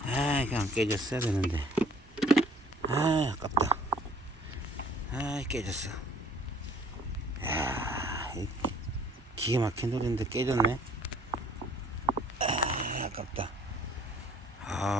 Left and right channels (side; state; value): both; normal; correlation 0.55